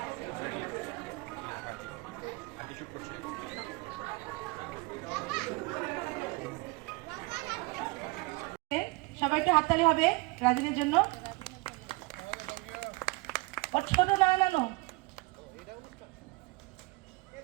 সবাইকে হাততালি হবে রাজিনের জন্য। ওর ছোট নানো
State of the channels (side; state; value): left; quieter; 24.7 dB